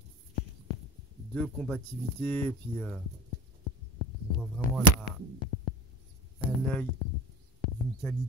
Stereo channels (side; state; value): both; normal; correlation 0.31